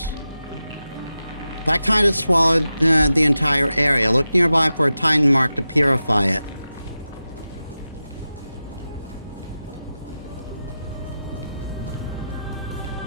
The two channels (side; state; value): both; inverted; correlation -0.92